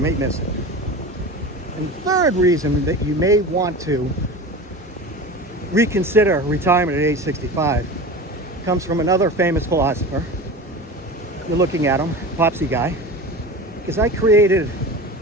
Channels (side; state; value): both; normal; correlation 0.31